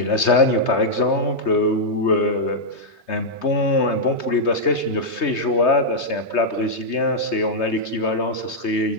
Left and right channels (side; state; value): right; late; 3.2 ms